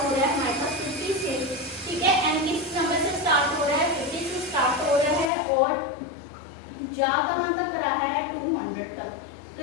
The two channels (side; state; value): right; drops out; at 5.3 s